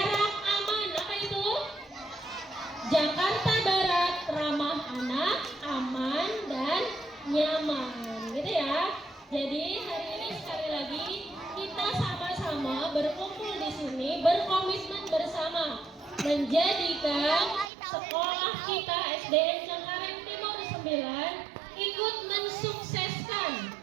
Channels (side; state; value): left; drops out; at 17.7 s